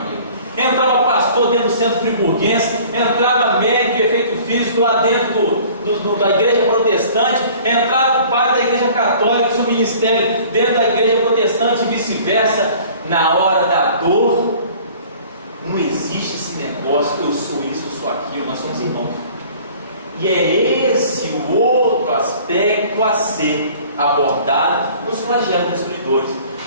Entrava pastor dentro do Centro Friburguense, entrava médico de efeito físico lá dentro da igreja protestante, entrava o padre da igreja católica, seu ministério dentro da igreja protestante e vice-versa. Na hora da dor, não existe esse negócio, eu sou isso, eu sou aquilo, nós somos irmãos. E é esse o outro aspecto a ser abordado nos flagelos destruidores.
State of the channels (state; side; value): inverted; both; correlation -0.49